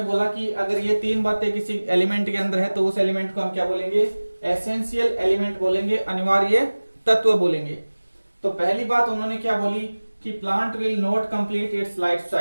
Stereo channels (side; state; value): both; inverted; correlation -1.00